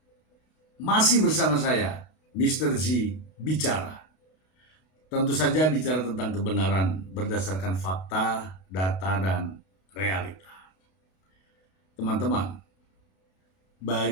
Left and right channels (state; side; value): late; right; 32 ms